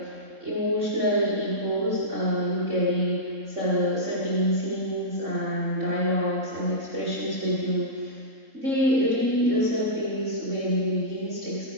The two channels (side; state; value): left; late; 3.7 ms